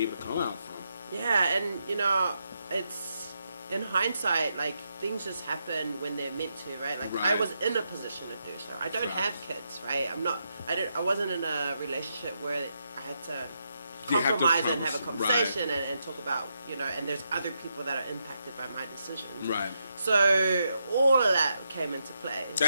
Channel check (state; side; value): inverted; both; correlation -0.82